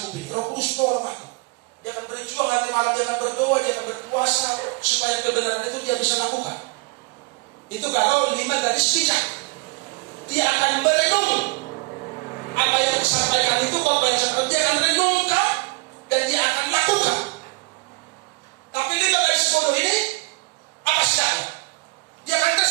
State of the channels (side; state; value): left; quieter; 30.1 dB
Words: ini. Roh Kudus tolong aku. Dia akan berjuang nanti malam, dia akan berdoa, dia akan berpuasa supaya kebenaran itu dia bisa lakukan. Itu kalau 5 garis bijak. Dia akan merenung apa yang disampaikan itu, dia akan renungkan dan dia akan lakukan. Tapi 5 garis bodoh ini apa sidaknya? Dia akan